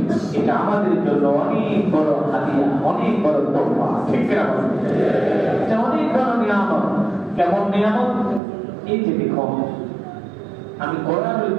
এটা আমাদের জন্য অনেক বড় হাদিয়া অনেক বড় তোহফা ঠিক কিনা বলেন এটা অনেক বড় নিয়ামত কেমন নিয়ামত এই যে দেখুন আমি কোরআনুল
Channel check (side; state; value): left; drops out; at 8.4 s